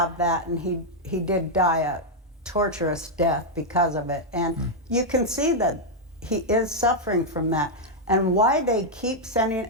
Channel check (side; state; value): both; normal; correlation -0.02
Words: that, and he did die a torturous death because of it. And you can see that he is suffering from that. And why they keep sending